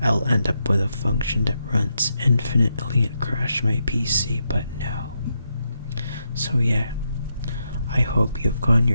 I'll end up with a function that runs infinitely and crash my PC, but no. So yeah, I hope you've gotten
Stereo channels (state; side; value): inverted; both; correlation -0.82